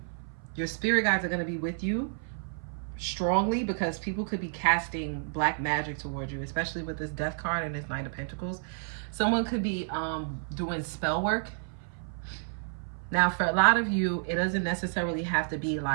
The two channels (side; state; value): left; silent; 55 dB below the other